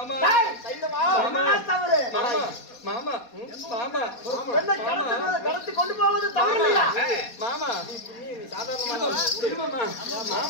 மாமா மாமா கடத்தி கொண்டு போவது தவறு இல்லையா? மாமா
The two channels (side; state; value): right; late; 4.2 ms